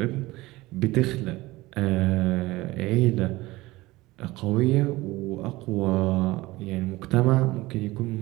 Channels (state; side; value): quieter; left; 19.6 dB